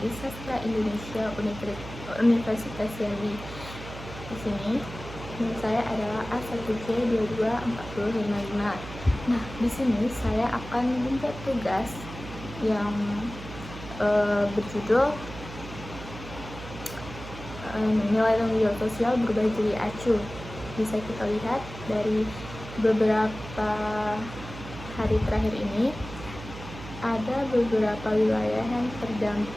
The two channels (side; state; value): right; noise; hum, 12 dB below the sound